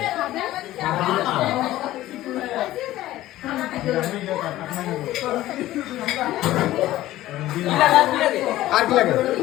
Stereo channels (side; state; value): right; quieter; 15.3 dB